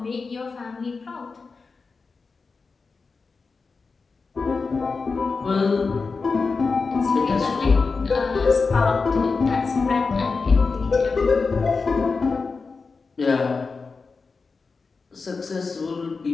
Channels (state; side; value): quieter; right; 4.5 dB